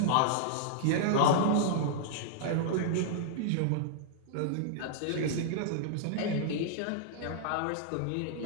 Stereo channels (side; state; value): both; different; correlation -0.01